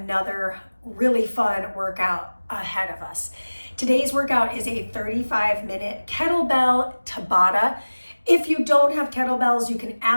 really fun workout ahead of us. Today's workout is a 35-minute kettlebell Tabata. If you don't have kettlebells, you can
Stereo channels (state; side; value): inverted; both; correlation -1.00